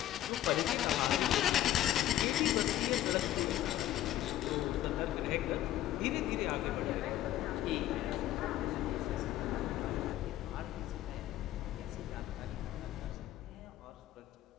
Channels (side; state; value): right; quieter; 13.2 dB